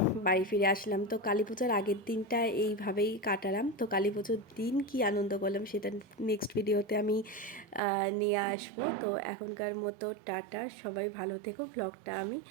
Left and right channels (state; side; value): drops out; left; at 7.8 s